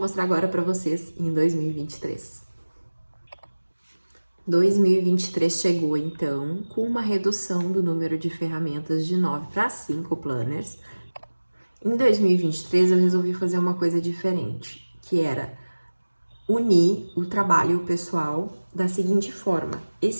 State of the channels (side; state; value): both; inverted; correlation -1.00